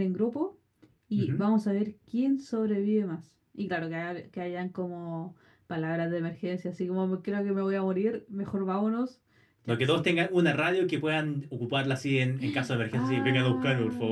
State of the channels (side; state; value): both; identical; correlation 1.00